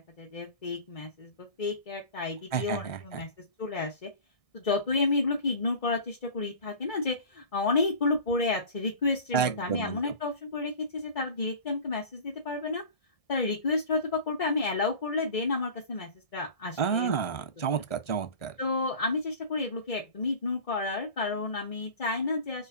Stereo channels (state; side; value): late; right; 1.6 ms